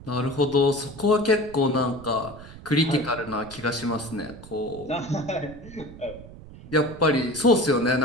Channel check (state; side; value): noise; right; rumble, 17 dB below the sound